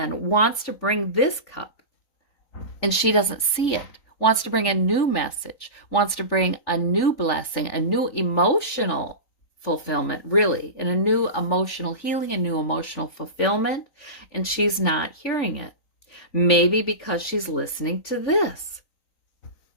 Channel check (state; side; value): late; right; 3.9 ms